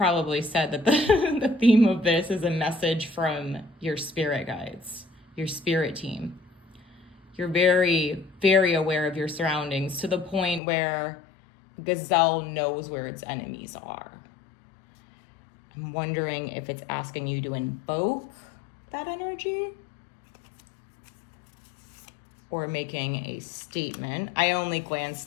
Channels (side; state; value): right; drops out; at 10.6 s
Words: said that the theme of this is a message from your spirit guides, your spirit team. You're very, very aware of your surroundings to the point where Gazelle knows where its enemies are. I'm wondering if it's asking you to invoke that energy or making a statement. I only